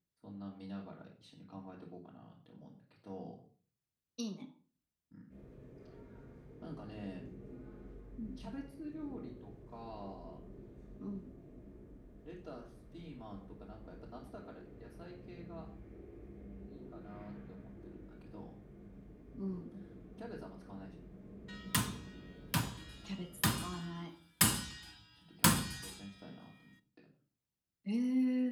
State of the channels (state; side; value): identical; both; correlation 1.00